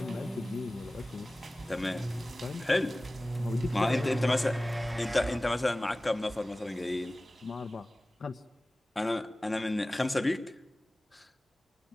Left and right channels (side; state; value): both; normal; correlation 0.98